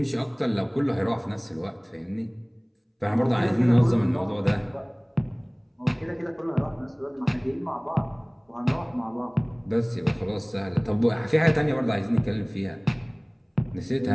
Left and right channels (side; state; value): both; identical; correlation 1.00